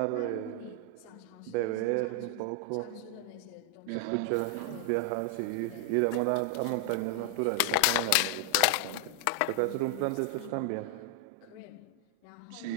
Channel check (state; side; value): different; both; correlation 0.00